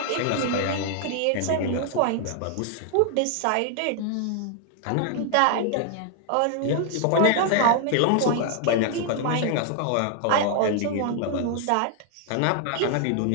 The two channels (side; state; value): both; different; correlation 0.00